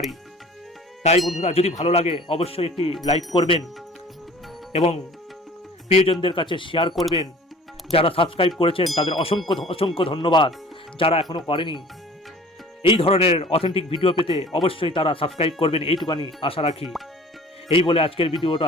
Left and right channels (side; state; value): both; normal; correlation 0.47